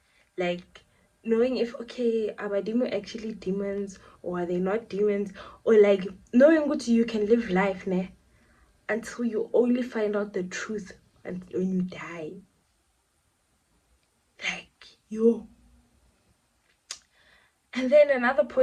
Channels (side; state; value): both; identical; correlation 1.00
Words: Like knowing if, okay, are Badimo actually demons or are they not demons? Or like knowing what you can live life until you only find out the truth and when you die. Like yo. And then another